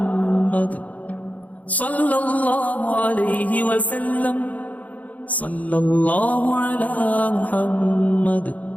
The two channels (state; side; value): late; right; 0.074 ms